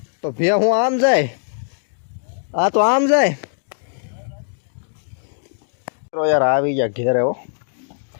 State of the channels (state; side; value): silent; right; digital silence